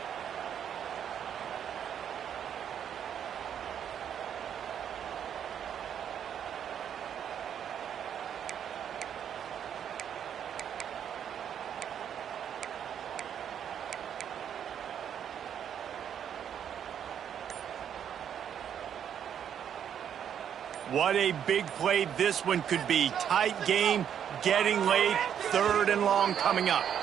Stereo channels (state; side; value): quieter; left; 8.9 dB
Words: What a big play this one could be. Tight game, getting late, 3rd and long coming up.